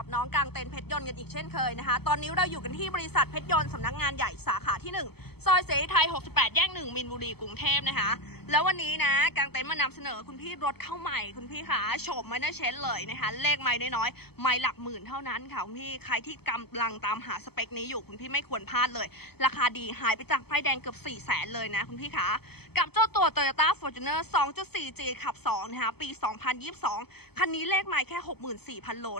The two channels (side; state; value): right; late; 0.96 ms